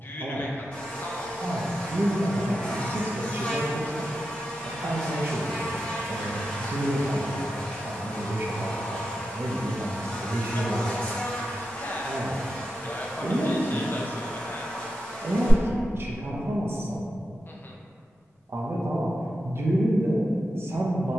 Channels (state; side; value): normal; both; correlation 0.89